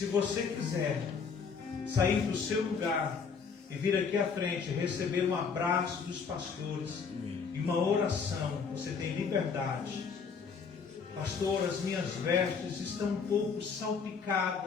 você quiser sair do seu lugar e vir aqui à frente, receber um abraço dos pastores e uma oração, você tem liberdade. Pastor, as minhas vestes estão um pouco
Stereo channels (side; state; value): right; quieter; 5.7 dB